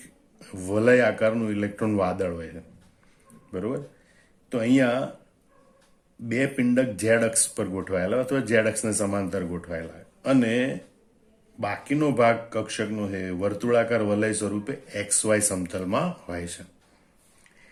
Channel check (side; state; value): both; identical; correlation 1.00